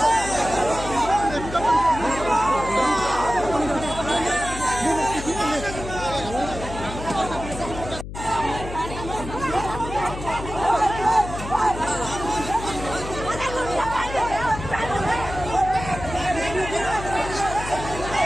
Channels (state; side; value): noise; left; hum, 9 dB below the sound